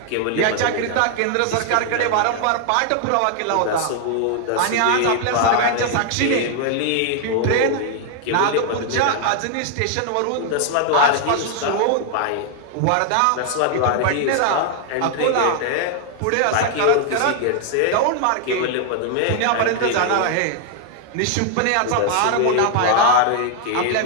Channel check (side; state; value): both; different; correlation 0.00